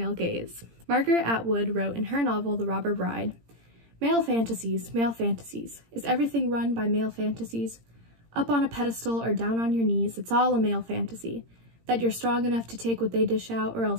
gaze? Margaret Atwood wrote in her novel The Robber Bride, male fantasies, is everything run by male fantasies? Up on a pedestal or down on your knees, it's all a male fantasy. That you're strong enough to take what they dish out or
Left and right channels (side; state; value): left; late; 17 ms